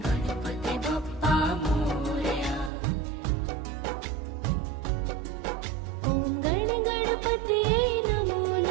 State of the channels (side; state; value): left; drops out; at 2.7 s